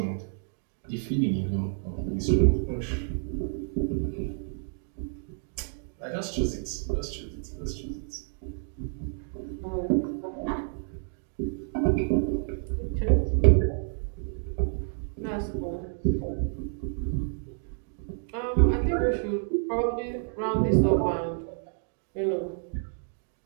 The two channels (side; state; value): left; silent; digital silence